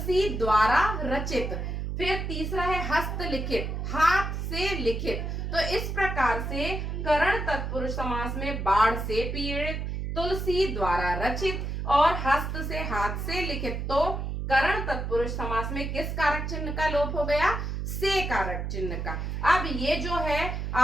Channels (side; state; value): right; noise; hum, 3 dB below the sound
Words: द्वारा रचित। फिर तीसरा है हस्तलिखित, हाथ से लिखित। तो इस प्रकार से करण तत्पुरुष समास में बाढ़ से पीड़ित, तुलसी द्वारा रचित और हस्त से, हाथ से लिखित। तो करण तत्पुरुष समास में किस कारक चिन्ह का लोप हो गया, से कारक चिन्ह का। अब ये जो है